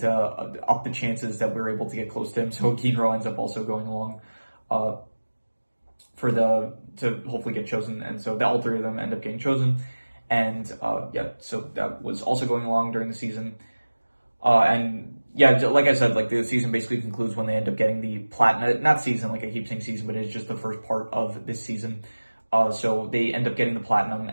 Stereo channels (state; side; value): inverted; both; correlation -1.00